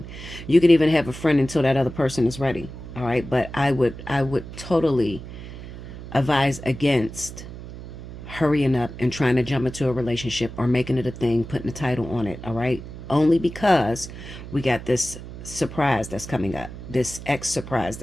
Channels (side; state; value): right; noise; hum, 12 dB below the sound